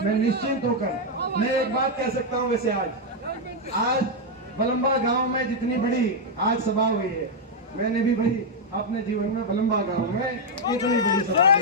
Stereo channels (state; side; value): normal; both; correlation 0.00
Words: मैं निश्चिंत होकर मैं एक बात कह सकता हूँ। वैसे आज बलम्बा गांव में जितनी बड़ी आज सभा हुई है, मैंने भी भाई अपने जीवन में बलम्बा गांव में इतनी बड़ी सभा